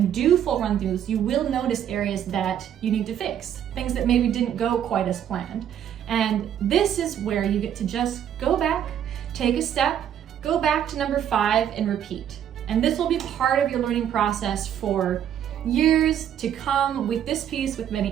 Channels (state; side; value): quieter; left; 9.8 dB